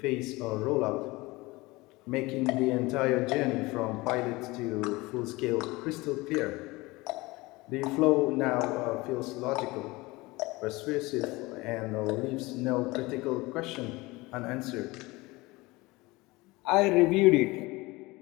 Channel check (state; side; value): quieter; right; 22.0 dB